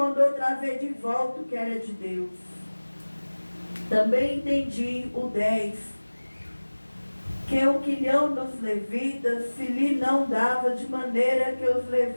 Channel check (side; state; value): both; inverted; correlation -1.00